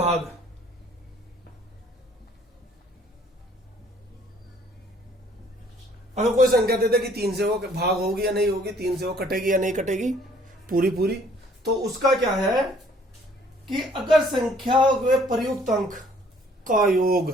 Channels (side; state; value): both; normal; correlation 0.59